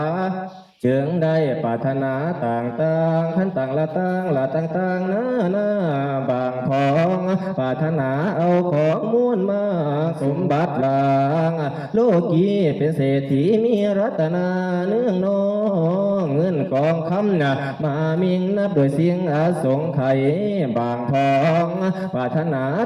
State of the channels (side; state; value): both; identical; correlation 1.00